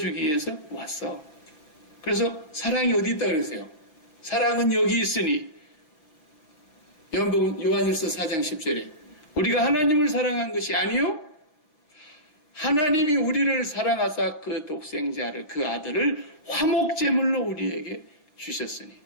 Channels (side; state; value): right; late; 6.3 ms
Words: 위해서 왔어. 그래서 사랑이 어디 있다 그랬어요? 사랑은 여기 있으니 요한일서 4장 10절에 우리가 하나님을 사랑한 것이 아니요 하나님이 우리를 사랑하사 그 독생자를 그 아들을 화목제물로 우리에게 주셨으니